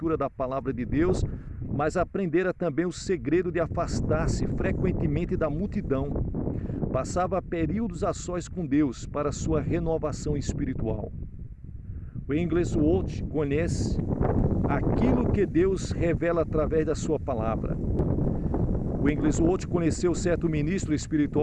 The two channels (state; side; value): identical; both; correlation 1.00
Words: da palavra de Deus, mas aprendera também o segredo de afastar-se frequentemente da multidão. Passava períodos a sós com Deus para sua renovação espiritual. O Wigglesworth conhece aquilo que Deus revela através da sua palavra. O Wigglesworth conheceu certo ministro